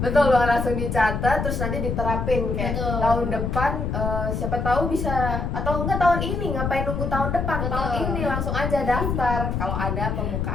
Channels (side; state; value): left; noise; rumble, 2 dB below the sound